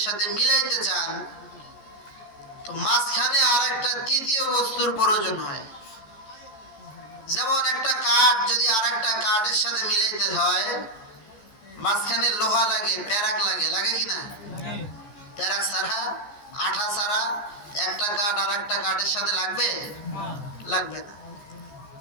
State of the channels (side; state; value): right; late; 13 ms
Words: সাথে মিলাইতে চান, তো মাঝখানে আরেকটা তৃতীয় বস্তুর প্রয়োজন হয়। যেমন একটা কাঠ যদি আরেকটা কাঠের সাথে মিলাইতে হয়, মাঝখানে লোহা লাগে, প্যারাক লাগে, লাগে কি না? প্যারাক ছাড়া, আঠা ছাড়া একটা কাঠ আরেকটা কাঠের সাথে লাগবে? লাগবে না।